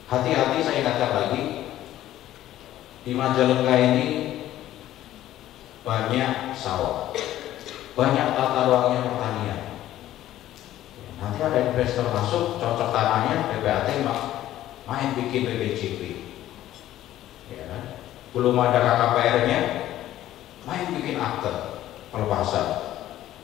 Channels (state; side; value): quieter; right; 13.5 dB